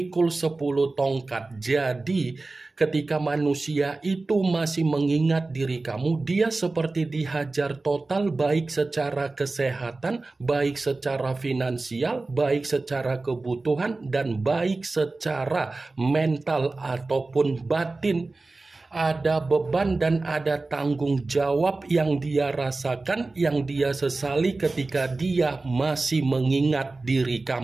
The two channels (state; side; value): quieter; left; 3.4 dB